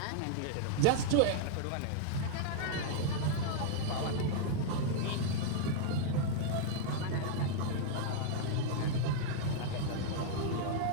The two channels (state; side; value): different; both; correlation -0.01